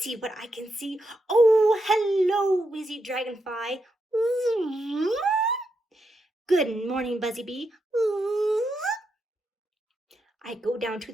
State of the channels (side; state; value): both; normal; correlation 0.83